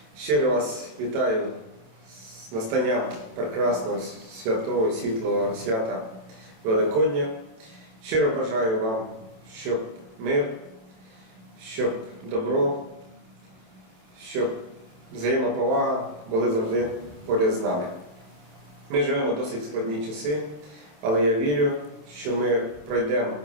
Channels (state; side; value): late; left; 27 ms